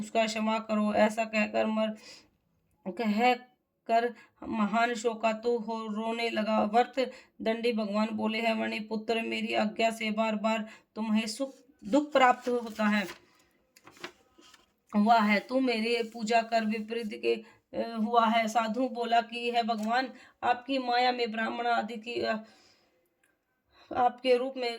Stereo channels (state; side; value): identical; both; correlation 1.00